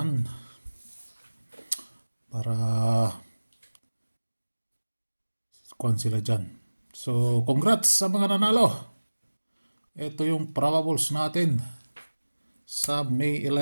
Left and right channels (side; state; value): both; inverted; correlation -1.00